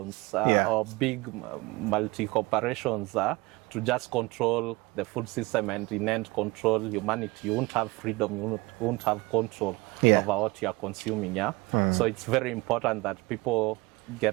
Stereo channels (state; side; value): quieter; left; 23.2 dB